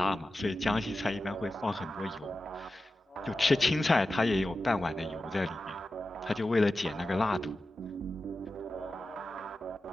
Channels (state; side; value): normal; both; correlation 0.93